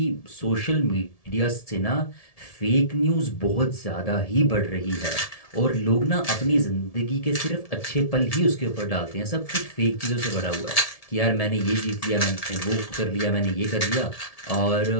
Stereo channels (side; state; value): right; late; 1.7 ms